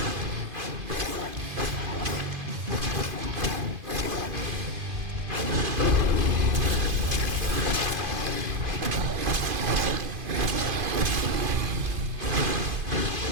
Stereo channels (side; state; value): left; late; 2.5 ms